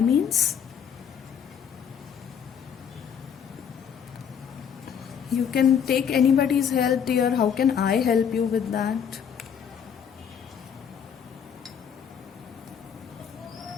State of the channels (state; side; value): quieter; right; 7.8 dB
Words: You can take anybody's help, dear. How can I help you with that?